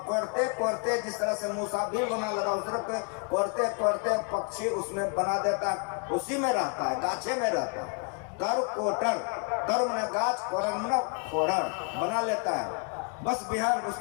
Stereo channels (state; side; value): quieter; right; 38.0 dB